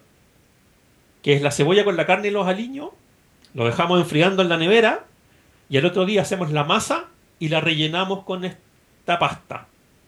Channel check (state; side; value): identical; both; correlation 1.00